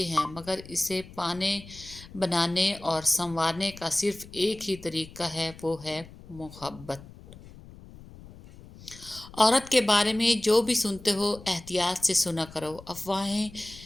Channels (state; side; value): noise; left; rumble, 18 dB below the sound